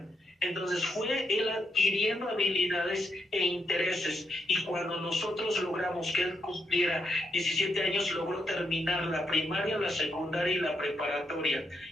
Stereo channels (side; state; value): both; normal; correlation 0.79